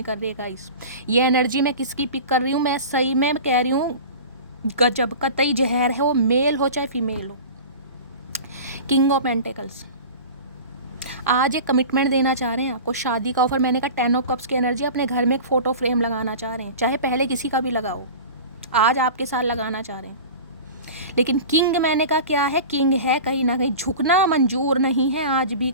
कर रही है गाइस। ये एनर्जी मैं किसकी पिक कर रही हूँ? मैं सही में कह रही हूँ गजब, कतई जहर है, वो मेल हो चाहे फीमेल हो। किंग ऑफ पेंटिकल्स आज एक कमिटमेंट देना चाह रहे हैं आपको, शादी का ऑफर। मैंने कहा 10 ऑफ कप्स की एनर्जी, अपने घर में एक फ़ोटो फ्रेम लगाना चाह रहे हैं, चाहे पहले किसी का भी लगाओ, आज आपके साथ लगाना चाह रहे हैं। लेकिन किंग मैंने कहा क्या है? किंग है, कहीं ना कहीं झुकना मंजूर नहीं है आज भी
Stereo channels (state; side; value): inverted; both; correlation -0.35